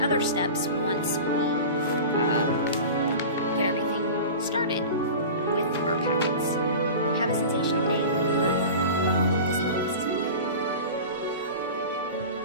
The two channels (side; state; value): both; inverted; correlation -0.33